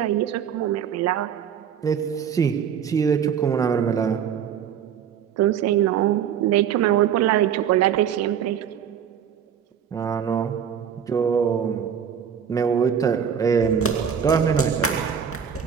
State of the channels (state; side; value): quieter; left; 8.2 dB